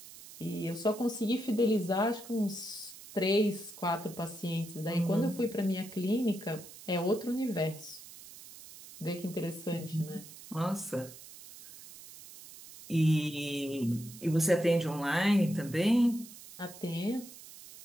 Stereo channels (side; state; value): right; noise; hiss, 17 dB below the sound